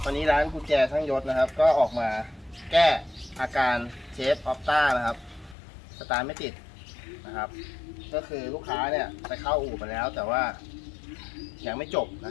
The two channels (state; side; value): drops out; right; at 5.6 s